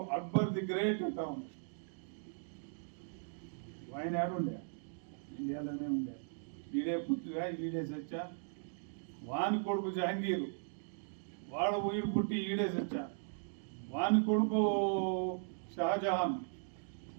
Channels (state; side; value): silent; left; digital silence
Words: అక్బర్ ది గ్రేట్ అంటా ఉంది, ఆయన యాడుండే, ఇండియాలోనే ఉండే. ఈడే పుట్టుగా ఈడే సచ్చా. వాని కొడుకు జహంగీరు వాడు వీడు పుట్టి ఈడే సచ్చా. వాని కొడుకు షాజహాన్